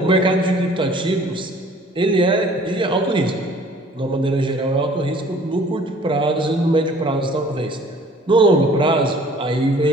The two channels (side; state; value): both; normal; correlation 0.52